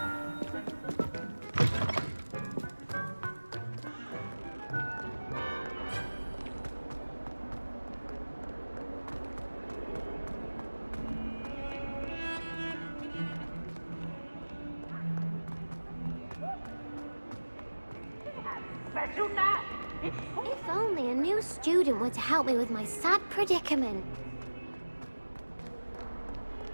If only a new student were to help me with my sad predicament.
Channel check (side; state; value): both; inverted; correlation -1.00